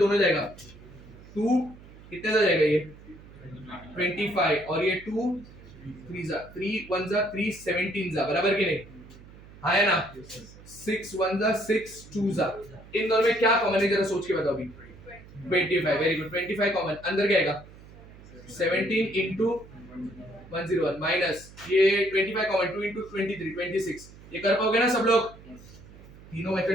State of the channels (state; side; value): noise; right; hum, 20 dB below the sound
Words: जाएगा, 2 कितने जा जाएगा? ये 25 और ये 2 3 जा 3 1 जा 3 17 जा, बराबर कि नहीं? हाँ है ना? 6 1 जा 6 2 जा, इन दोनों में क्या कॉमन है जरा सोच के बताओ अभी। 25, वेरी गुड, 25 कॉमन, अंदर क्या आएगा? 17 into 101 माइनस ये 25 कॉमन, 2 into 23 26। ये कर पाओगे ना सब लोग? तीनों